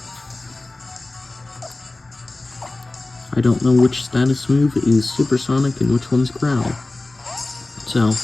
I don't know which status move is supersonic and which one's growl. So,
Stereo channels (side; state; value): right; quieter; 3.0 dB